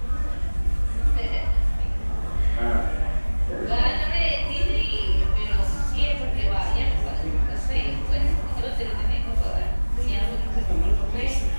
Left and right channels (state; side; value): inverted; both; correlation -1.00